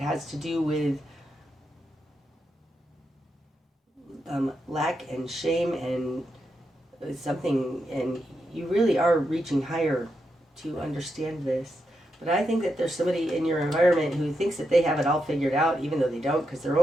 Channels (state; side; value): normal; both; correlation 0.84